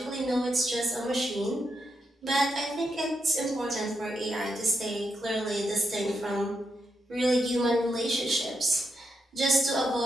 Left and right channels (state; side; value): normal; both; correlation 0.82